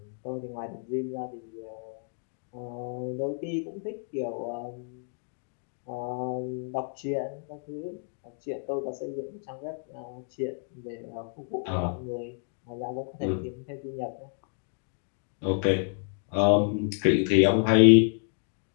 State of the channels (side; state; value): right; silent; 58 dB below the other